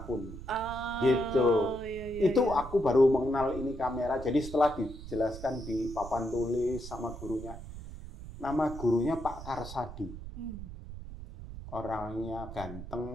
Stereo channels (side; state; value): right; noise; rumble, 12 dB below the sound